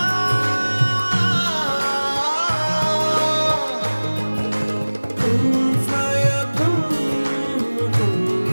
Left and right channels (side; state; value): both; inverted; correlation -1.00